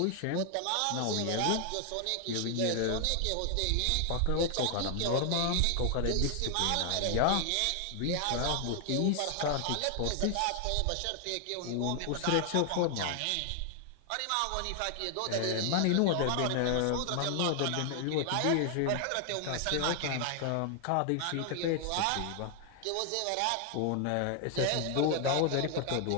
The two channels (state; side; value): different; both; correlation 0.00